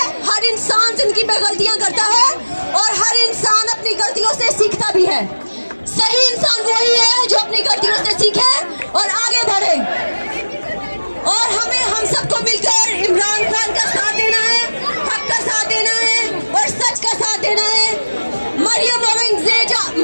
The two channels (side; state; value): both; inverted; correlation -1.00